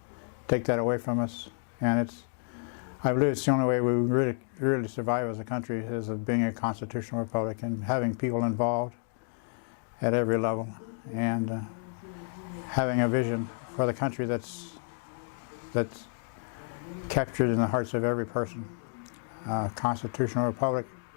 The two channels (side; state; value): right; silent; 56 dB below the other